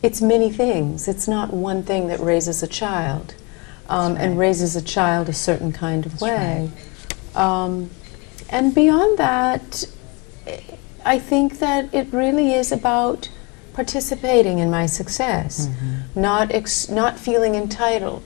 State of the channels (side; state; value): right; quieter; 28.5 dB